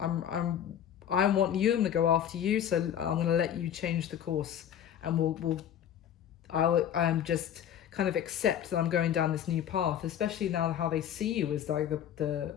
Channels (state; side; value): quieter; right; 9.7 dB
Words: want you. I'm gonna go after you. So I'm gonna let you change the course, and I'm just kind of accept that I'm going down this new path. Especially now how they see you as like the